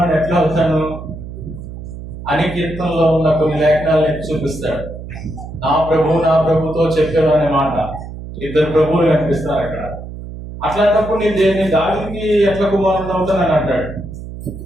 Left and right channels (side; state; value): right; noise; hum, 11 dB below the sound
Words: ఎట్లా అవుతాను అని కీర్తనలో ఉన్న కొన్ని లేఖనాలను చూపిస్తాడు. నా ప్రభుతో చెప్పాను అనే మాట. ఇద్దరు ప్రభువులు కనిపిస్తారు అక్కడ. అట్లాంటప్పుడు నేను దావీదుకి ఎట్లా కుమారుడు అవుతానని అంటాడు.